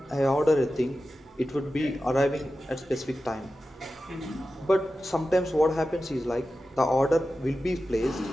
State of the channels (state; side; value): normal; both; correlation 0.93